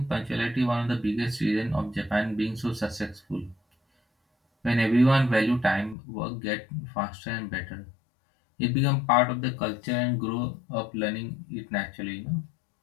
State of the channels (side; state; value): right; drops out; at 6.0 s